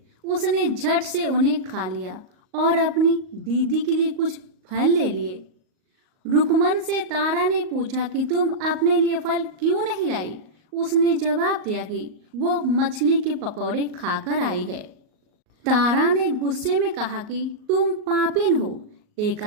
उसने झट से उन्हें खा लिया और अपनी दीदी के लिए कुछ फल ले लिए। रुकमन से तारा ने पूछा कि तुम अपने लिए फल क्यों नहीं लाई। उसने जवाब दिया कि वो मछली के पकौड़े खाकर आई है। तारा ने गुस्से में कहा कि तुम पापिन हो,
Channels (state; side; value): late; left; 38 ms